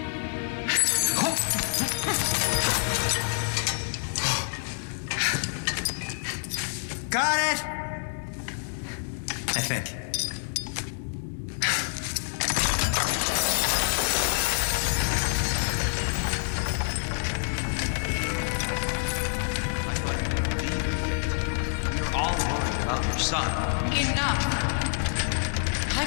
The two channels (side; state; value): right; silent; digital silence